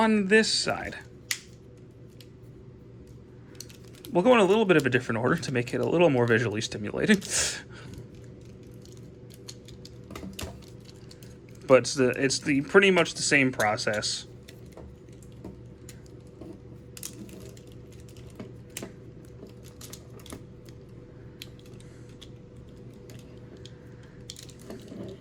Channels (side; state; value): both; identical; correlation 1.00